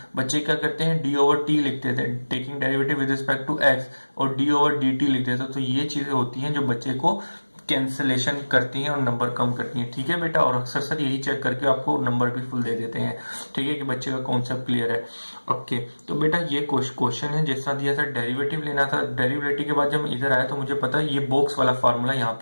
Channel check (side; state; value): both; inverted; correlation -1.00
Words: बच्चे क्या करते हैं, डी ओवर टी लिखते थे, taking derivative with respect to X, और डी ओवर डी टी लिखते थे। तो ये चीजें होती हैं जो बच्चे को कैंसलेशन करती हैं और नंबर कम करती हैं। ठीक है बेटा, और अक्सर सर यही चेक करके आपको नंबर भी फुल दे देते हैं। ठीक है, कि बच्चे का कॉन्सेप्ट क्लियर है। ओके, तो बेटा ये क्वेश्चन है जैसा दिया था, डेरिवेटिव लेना था। डेरिवेटिव के बाद जब मैं इधर आया तो मुझे पता है ये बॉक्स वाला फार्मूला यहाँ